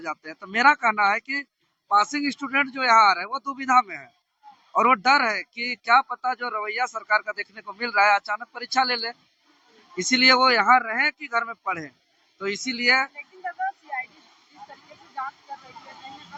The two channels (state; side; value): identical; both; correlation 1.00